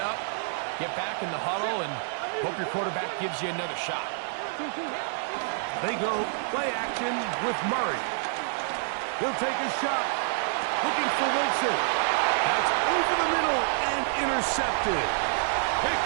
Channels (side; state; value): left; silent; 59 dB below the other